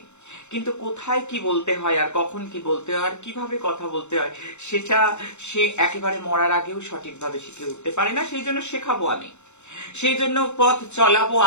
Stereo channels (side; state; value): right; late; 0.83 ms